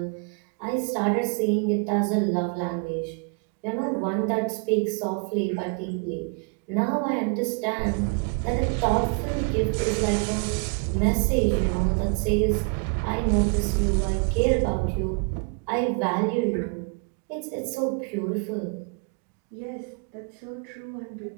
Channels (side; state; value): left; quieter; 37.3 dB